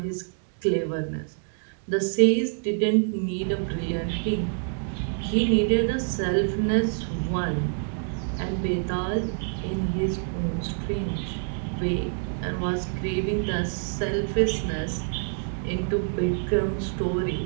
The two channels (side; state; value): left; silent; 60 dB below the other